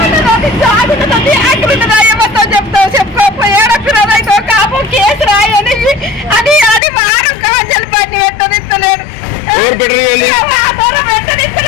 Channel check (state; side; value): drops out; right; at 6.8 s